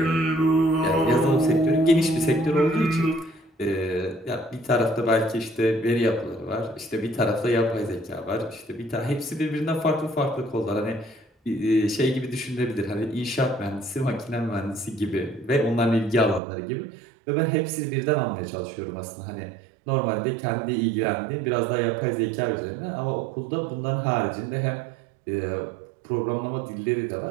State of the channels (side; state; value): left; drops out; at 16.4 s